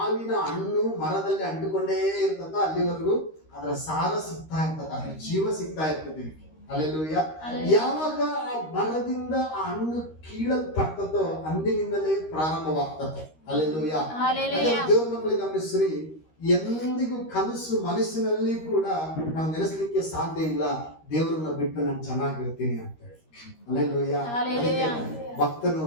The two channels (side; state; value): right; late; 13 ms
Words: ಹಣ್ಣು ಮರದಲ್ಲಿ ಅಂಟಿಕೊಂಡೇ ಇರ್ತದ ಅಲ್ಲಿವರೆಗೂ ಅದರ ಸಾರ ಸಿಗ್ತಾ ಇರ್ತದ, ಅದರ ಜೀವ ಸಿಗ್ತಾ ಇರ್ತದೆ. ಹಲ್ಲೆಲೂಯಾ. ಯಾವಾಗ ಆ ಮರದಿಂದ ಆ ಹಣ್ಣು ಕೀಳಲ್ಪಡ್ತದೋ ಅಂದಿನಿಂದಲೇ ಪ್ರಾರಂಭವಾಗ್ತದೆ. ಹಲ್ಲೆಲೂಯಾ. ದೇವ್ರ ಮಕ್ಕಳಿಗೆ ಗಮನಿಸ್ರಿ, ಎಂದಿಗೂ ಕನಸು ಮನಸ್ಸಿನಲ್ಲಿ ಕೂಡ ನಾವು ನೆನೆಸ್ಲಿಕ್ಕೆ ಸಾಧ್ಯ ಇಲ್ಲ, ದೇವರನ್ನ ಬಿಟ್ಟು ನಾನು ಚೆನ್ನಾಗಿರ್ತೀನಿ ಅಂತ ಹೇಳಿ. ಹಲ್ಲೆಲೂಯಾ. ಭಕ್ತನು